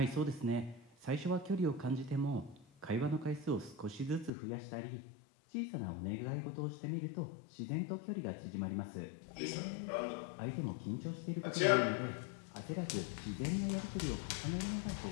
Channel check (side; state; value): right; drops out; at 4.3 s